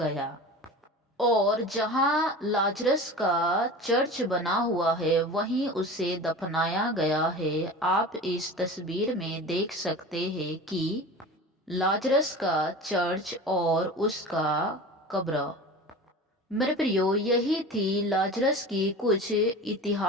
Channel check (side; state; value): both; normal; correlation 0.34